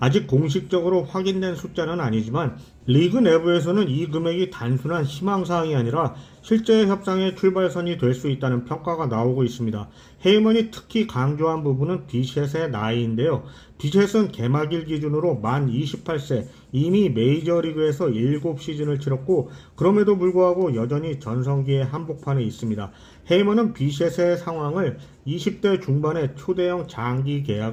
아직 공식적으로 확인된 숫자는 아니지만 리그 내부에서는 이 금액이 단순한 희망사항이 아니라 실제 협상의 출발선이 될 수 있다는 평가가 나오고 있습니다. 헤이먼이 특히 강조한 부분은 비셋의 나이인데요. 비셋은 개막일 기준으로 만 28세, 이미 메이저리그에서 7시즌을 치렀고 그럼에도 불구하고 여전히 전성기의 한복판에 있습니다. 헤이먼은 비셋의 상황을 20대 중반에 초대형 장기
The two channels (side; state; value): both; identical; correlation 1.00